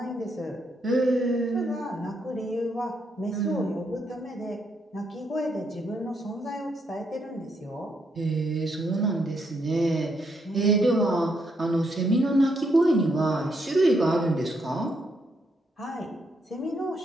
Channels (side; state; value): both; normal; correlation 0.76